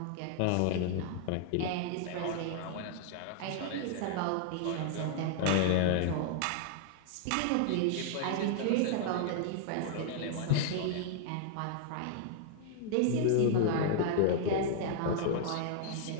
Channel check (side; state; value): both; different; correlation -0.01